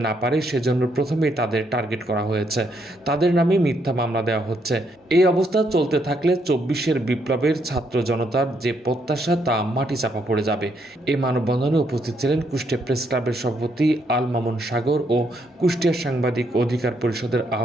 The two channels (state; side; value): normal; both; correlation 0.74